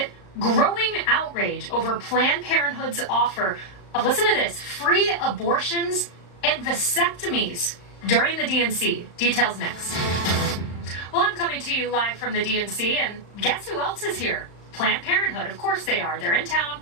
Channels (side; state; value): right; late; 35 ms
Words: Growing outrage over Planned Parenthood's offer of, listen to this, free abortions and vasectomies during the DNC. Details next. Well, I'm coming to you live from the DNC, and guess who else is here? Planned Parenthood. Of course they are. They're in town